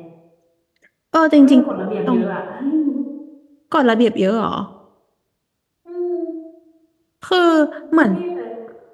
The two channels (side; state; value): both; identical; correlation 1.00